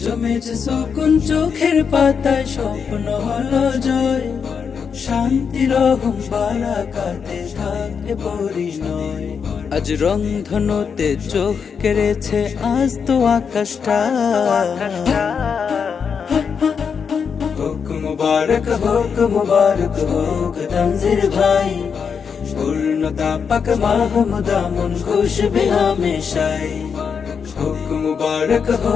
জমেছে সুকুন চোখের পাতায়, স্বপ্ন হলো জয়। শান্তি রহম বারাকাতে থাকে পরিণয়। আজ রংধনুতে চোখ কেড়েছে আজ তো আকাশটা। হোক মুবারক হোক তনজির ভাই, পূর্ণতা পাক মাহমুদা মন খুশ भी हमेशाई। হোক মুবারক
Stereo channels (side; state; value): right; quieter; 6.4 dB